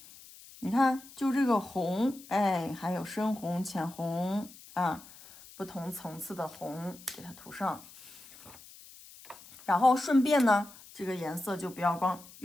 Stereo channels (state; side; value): noise; left; hiss, 20 dB below the sound